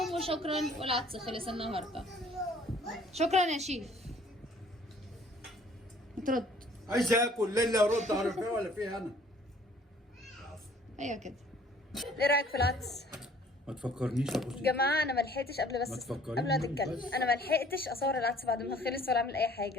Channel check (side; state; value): both; normal; correlation 0.55